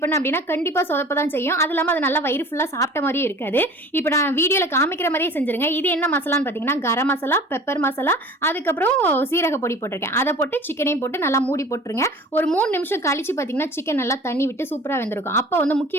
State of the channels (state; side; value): normal; both; correlation 0.43